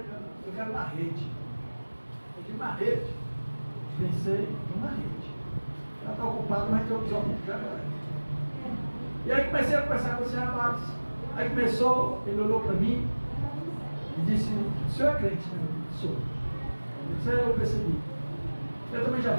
eu quero uma rede. Eu digo, uma rede? Pensei numa rede. Ela está ocupada, mas tem outros homens que agora. E aí comecei a conversar com esse rapaz. Aí começou, ele olhou para mim e disse, o senhor é crente, né? Sou. Isso aí eu percebi. Eu também já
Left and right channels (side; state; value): both; inverted; correlation -1.00